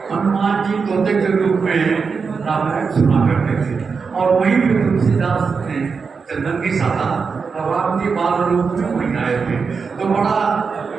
हनुमान जी तोते के रूप में रामायण सुना करते थे। और वहीं पे तुलसीदास ने चंदन की साधा और राम जी बाल रूप में वहीं आए थे। तो बड़ा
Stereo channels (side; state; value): left; quieter; 5.3 dB